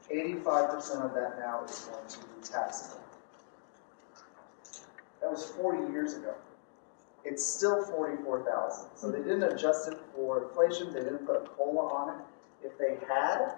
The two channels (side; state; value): right; silent; digital silence